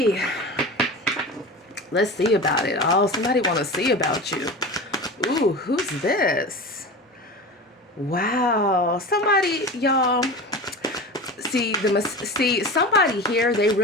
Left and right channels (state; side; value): normal; both; correlation 0.30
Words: Let's see about it. Oh, somebody want to see about you. Ooh, who's this? Wow. Somebody, y'all. See, somebody here, they